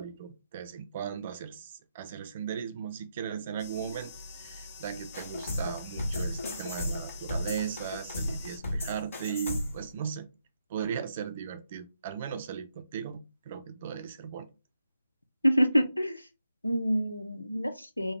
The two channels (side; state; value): both; inverted; correlation -0.83